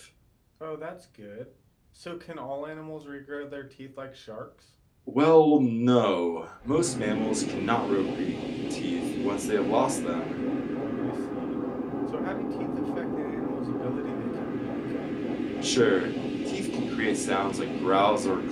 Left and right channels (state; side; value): identical; both; correlation 1.00